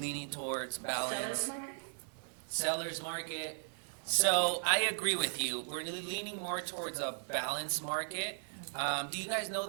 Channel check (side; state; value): left; silent; 53 dB below the other